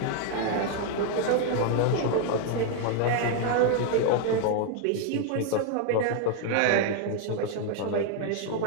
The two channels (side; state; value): both; different; correlation 0.00